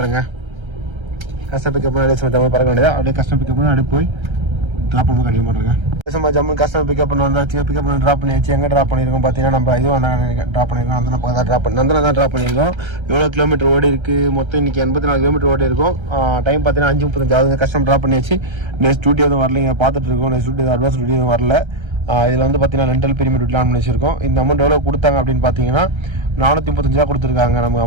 கஸ்டமர் பிக்கப் பண்ணி அப்படியே சும்மா ஜம்மு பறக்க வேண்டியதா. அப்படியே கஸ்டமர் பிக்கப் பண்ணி அப்படியே போய் ட்ராப் பண்ண கண்டினியூ பண்ணுறேங்க. சும்மா ஜம்மு கஸ்டமர் பிக்கப் பண்ண வந்தாச்சு. பிக்கப் பண்ணி ட்ராப் பண்ணியாச்சு. எங்கே ட்ராப் பண்ணியிருக்கோம் பார்த்தீங்கன்னா நம்ம இதுவும் ட்ராப் பண்ணியிருக்கோம். அந்த பக்கம் தான் ட்ராப் பண்ணியிருக்கோம். எவ்வளோ கிலோமீட்டர் ஓடி இருக்குது மொத்தம் இன்றைக்கி 84 கிலோமீட்டர் ஓடி இருக்கும். டைம் பார்த்தீங்கன்னா 5:35 ஆகுது. கஸ்டமர் ட்ராப் பண்ணியாச்சு. நெக்ஸ்ட் டியூட்டி எதுவும் வரலைங்க, பார்த்துட்டு இருக்கோம். நெக்ஸ்ட் டியூட்டி அட்வான்ஸ் டியூட்டி எதுவும் வரல. இதில் வந்து பார்த்தீங்கன்னா ரெண்டல் பிரீமியம் டியூட்டில் ஆன் பண்ணி வச்சிருக்கோம். இந்த அமௌண்ட் எவ்வளோ கொடுத்தாங்க அப்படின்னு பார்த்தீங்கன்னா 435 ரூபா கொடுத்துருக்காங்க நமக்கு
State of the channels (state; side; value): late; left; 1.3 ms